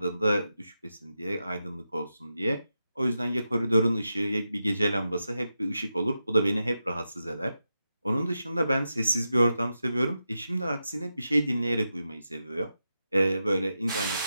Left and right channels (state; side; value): inverted; both; correlation -0.89